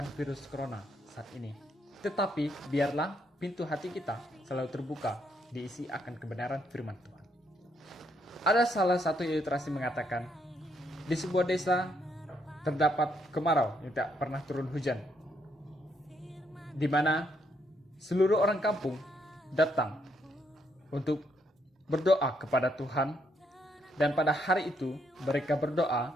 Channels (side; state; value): both; normal; correlation 0.74